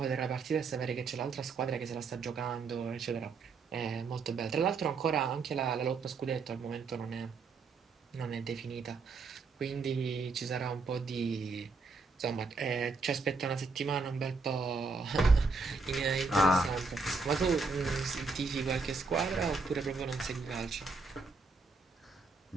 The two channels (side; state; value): left; quieter; 4.2 dB